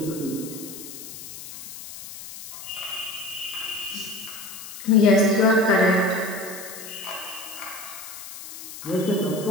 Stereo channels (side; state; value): left; noise; hiss, 12 dB below the sound